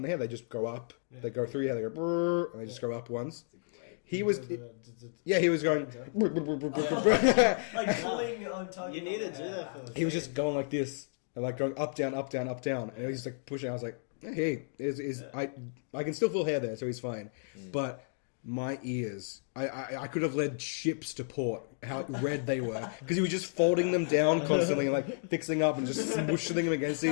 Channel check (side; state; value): right; silent; digital silence